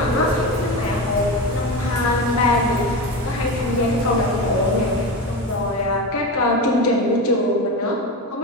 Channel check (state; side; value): normal; both; correlation 0.22